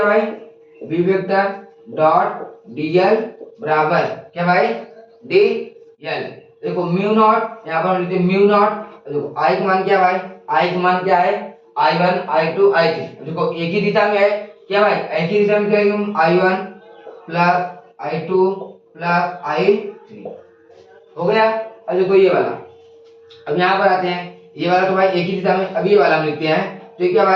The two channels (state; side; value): identical; both; correlation 1.00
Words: भाई v वेक्टर डॉट dl बराबर क्या भाई dl, देखो म्यू नॉट, यहाँ पर लिखते म्यू नॉट, देखो I का मान क्या भाई, I का मान क्या है I1 I2 I3, देखो एक ही दिशा में है, क्या भाई एक ही दिशा में क्या है, I1 plus I2 plus I3 हो गया। अब देखो ये वाला, अब यहाँ पर आते हैं, ये वाला तो भाई एक ही दिशा में, अब ये वाला हम लिखते हैं, तो ये क्या